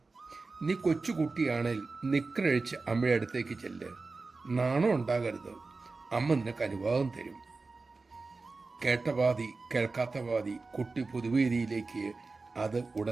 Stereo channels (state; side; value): quieter; left; 3.8 dB